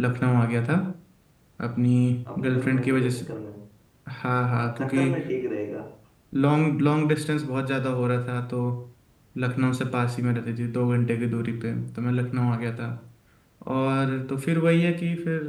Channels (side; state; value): both; identical; correlation 1.00